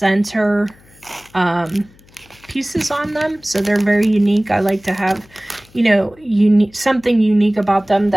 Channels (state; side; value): noise; left; hum, 28 dB below the sound